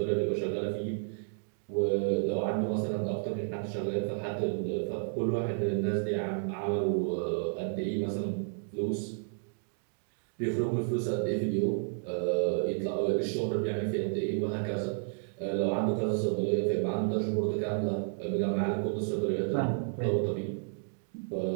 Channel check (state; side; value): silent; left; digital silence